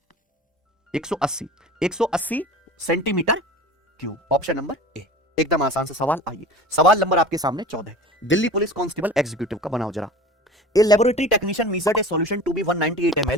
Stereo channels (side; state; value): both; normal; correlation 0.38